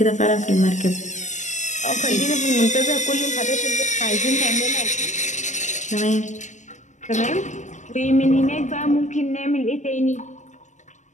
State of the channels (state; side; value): late; right; 0.34 ms